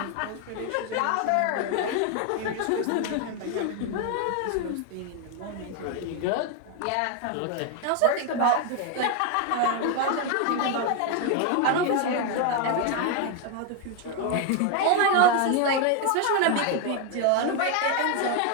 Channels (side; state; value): both; different; correlation 0.01